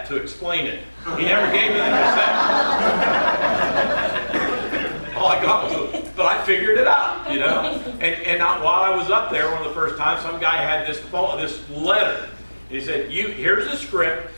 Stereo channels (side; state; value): both; inverted; correlation -1.00